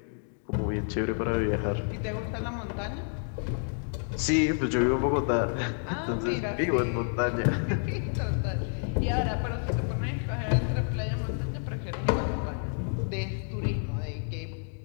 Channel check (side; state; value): right; silent; 58 dB below the other